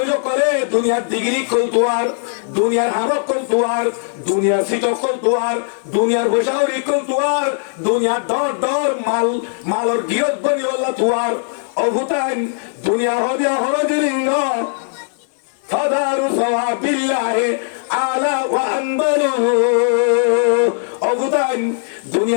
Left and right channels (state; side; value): silent; right; digital silence